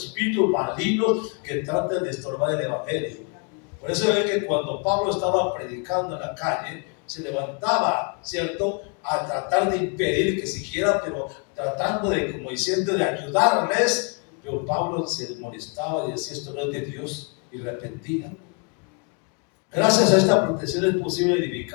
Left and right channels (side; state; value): right; quieter; 36.0 dB